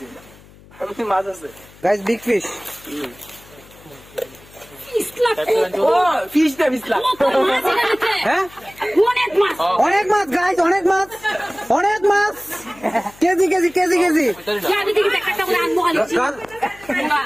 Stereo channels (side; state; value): left; noise; hum, 24 dB below the sound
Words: মাছ আছে গাইস বিগ ফিশ অনেক মাছ গাইস অনেক মাছ কেজি